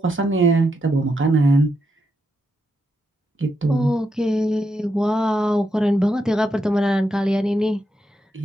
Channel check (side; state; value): both; normal; correlation 0.82